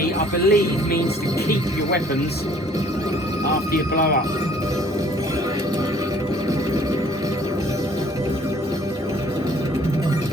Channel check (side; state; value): both; normal; correlation 0.58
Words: I believe, means to keep your weapons after you blow up.